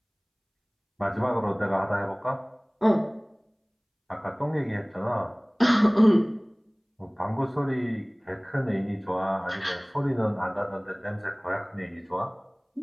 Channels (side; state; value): both; identical; correlation 1.00